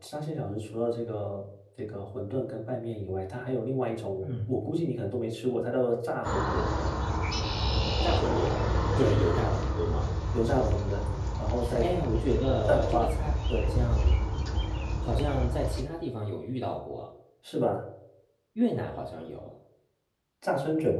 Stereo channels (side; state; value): both; identical; correlation 1.00